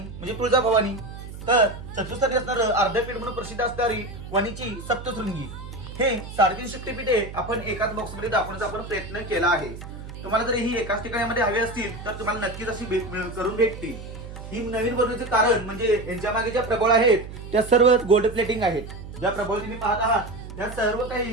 तुळजाभवानी, तर चतुर्थ स्थानी असणारं अर्धपीठ म्हणून प्रसिद्ध असणारी वणीची सप्तशृंगी. हे 3.5 शक्तिपीठे आपण एकाच बॉक्स मध्ये दाखवण्याचा आपण प्रयत्न केला आहे. तुम्हाला जर ही एकाच ठिकाणामध्ये हवी असतील तर तुम्हाला नक्कीच अशी करून भेटतील. ही नवीन बनवण्याचे कारण म्हणजे यांच्या मागे ज्या प्रबळ आहेत त्या सर्व गोल्ड प्लेटिंग आहेत. ज्या प्रबळ तुम्ही पाहत आहात त्या सर्व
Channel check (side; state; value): right; noise; hum, 12 dB below the sound